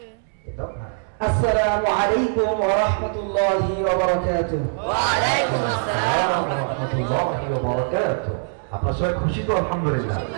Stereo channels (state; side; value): silent; left; 64 dB below the other